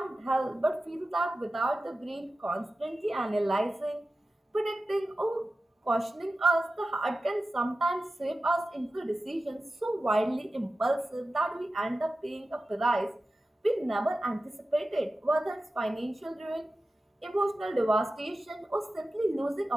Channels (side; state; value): both; normal; correlation 0.94